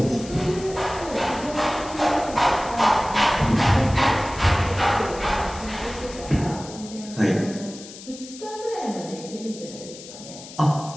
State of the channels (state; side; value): noise; left; hiss, 15 dB below the sound